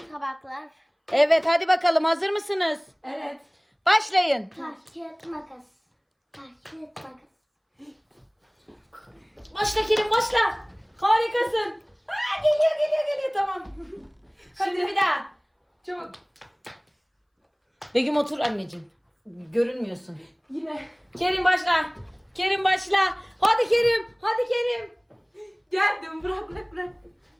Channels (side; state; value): both; identical; correlation 1.00